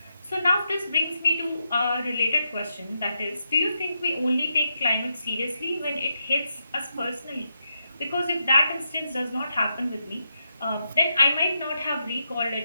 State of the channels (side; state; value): both; inverted; correlation -0.82